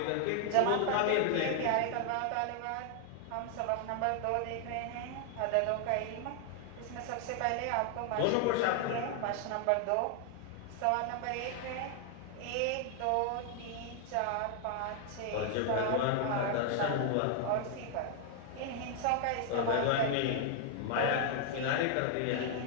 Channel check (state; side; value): different; both; correlation 0.00